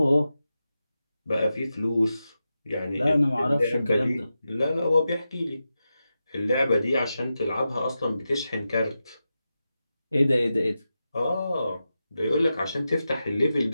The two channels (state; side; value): inverted; both; correlation -0.91